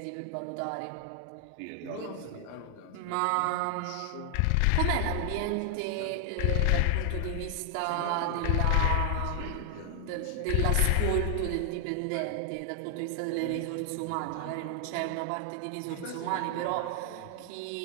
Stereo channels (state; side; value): different; both; correlation 0.00